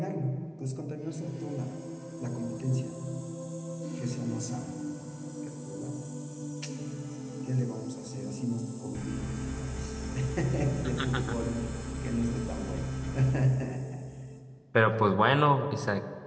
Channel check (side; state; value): both; identical; correlation 1.00